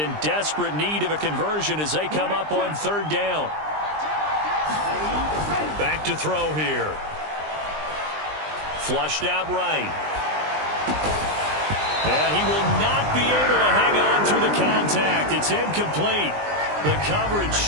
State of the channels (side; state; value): left; late; 20 ms